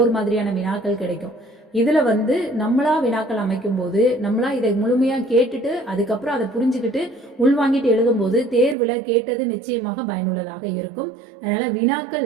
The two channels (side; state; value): left; drops out; at 8.8 s